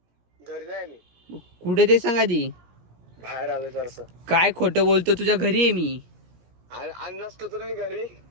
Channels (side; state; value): left; late; 17 ms